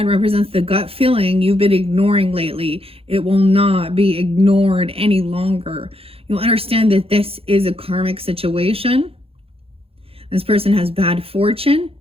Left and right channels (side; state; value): left; late; 0.27 ms